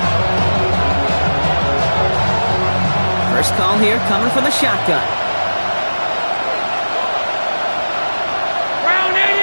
First call here coming from the shotgun. Brown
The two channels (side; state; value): both; inverted; correlation -1.00